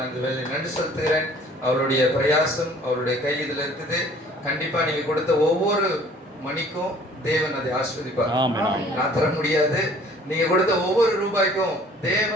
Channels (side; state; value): both; normal; correlation 0.53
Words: நன்றி செலுத்துகிறேன். அவருடைய பிரயாசம் அவருடைய கை இதில் இருக்குது. கண்டிப்பா நீங்க கொடுத்த ஒவ்வொரு மணிக்கும் தேவன் அதை ஆஸ்வதிப்பார். நான் தர முடியாது. நீங்க கொடுத்த ஒவ்வொரு ரூபாய்க்கும்